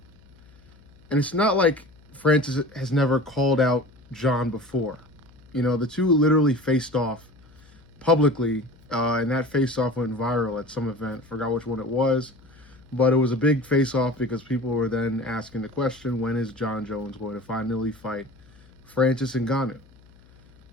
And it's not like Francis has never called out John before. You know, the two literally faced off publicly, and that face off went viral at some event. Forgot which one it was, but it was a big face off because people were then asking the question, when is John Jones going to finally fight Francis Ngannou?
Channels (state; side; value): noise; left; hum, 27 dB below the sound